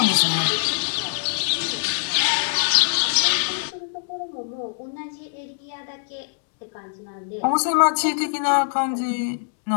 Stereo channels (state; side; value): silent; right; digital silence